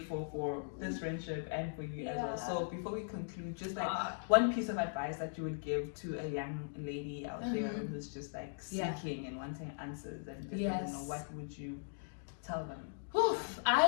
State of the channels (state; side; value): silent; right; digital silence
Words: for this friendship and for you as well. So before we conclude, just like one piece of advice that you would give to a young lady out there who's just like seeking and wanting answers and just doesn't know, what would you tell them? Oof,